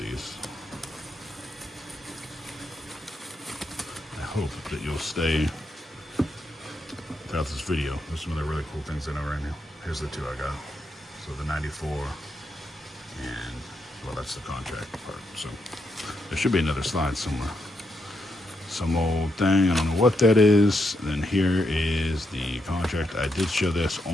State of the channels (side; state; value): both; normal; correlation 0.82